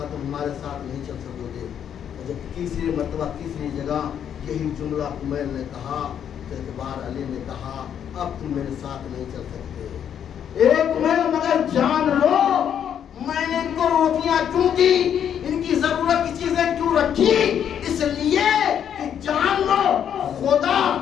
تم ہمارے ساتھ نہیں چل سکو گے۔ اور جب تیسری مرتبہ تیسری جگہ یہی جملہ کمیل نے کہا تو ایک بار علی نے کہا اب تم میرے ساتھ نہیں چل سکتے۔ ایک کمیل مگر جان لو میں نے ان کو روٹیاں کیوں دی، ان کی ضرورت کی چیزیں کیوں رکھی، اس لیے کہ جان لو خدا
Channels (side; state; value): right; quieter; 8.9 dB